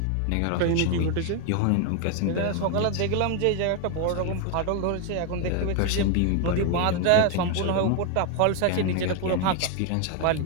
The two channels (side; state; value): both; different; correlation 0.01